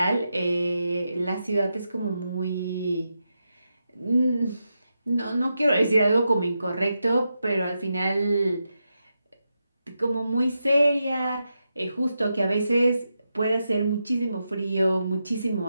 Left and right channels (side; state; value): both; inverted; correlation -0.87